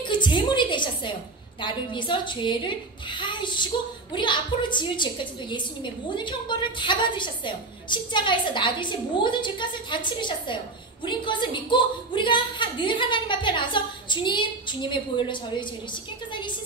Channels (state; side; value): quieter; left; 3.4 dB